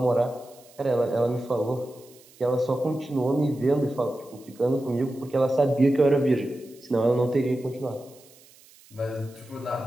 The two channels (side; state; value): right; noise; hiss, 26 dB below the sound